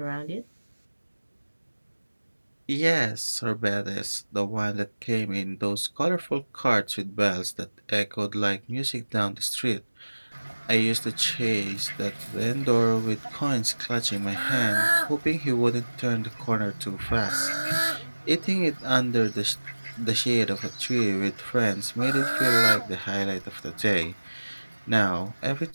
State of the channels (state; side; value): inverted; both; correlation -1.00